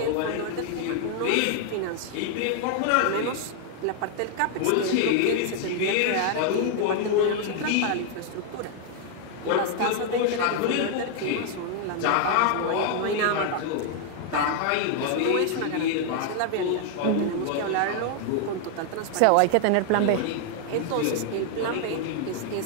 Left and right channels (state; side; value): different; both; correlation 0.00